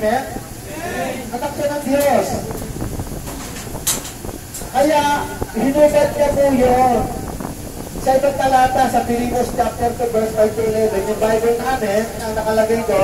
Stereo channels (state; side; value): identical; both; correlation 1.00